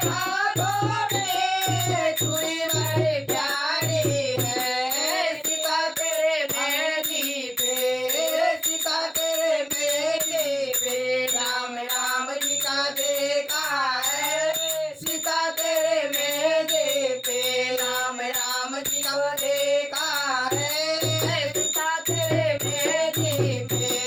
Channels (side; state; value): both; identical; correlation 1.00